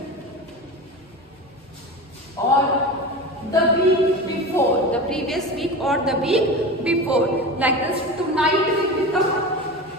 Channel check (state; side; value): normal; both; correlation 0.28